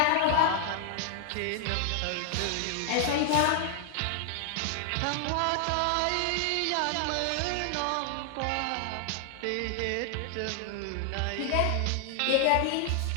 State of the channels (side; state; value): both; different; correlation 0.00